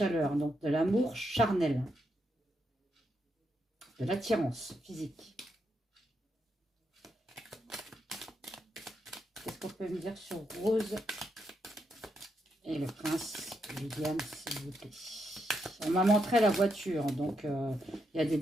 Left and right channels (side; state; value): both; normal; correlation 0.81